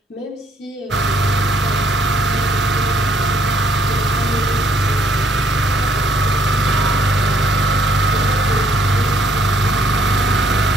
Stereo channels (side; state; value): both; normal; correlation 0.66